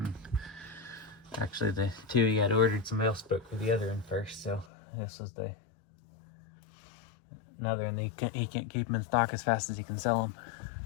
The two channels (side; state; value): right; drops out; at 4.7 s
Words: Actually, the two he had ordered, somebody else spoke for the other one first, so this was another, and he can't keep them in stock as fast as he can sell them.